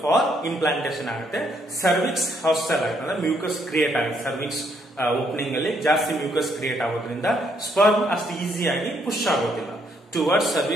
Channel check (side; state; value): both; normal; correlation 0.71